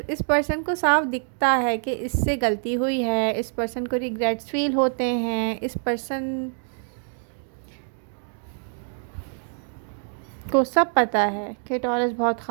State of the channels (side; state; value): left; silent; 62 dB below the other